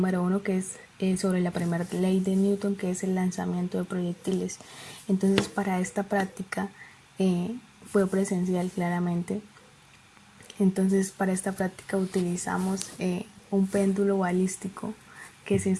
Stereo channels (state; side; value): identical; both; correlation 1.00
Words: 1, que es sobre la primera ley de Newton, que es el lanzamiento de proyectiles. Entonces, para esta práctica fue presencial claramente. Entonces, para esta práctica utilizamos un péndulo balístico que se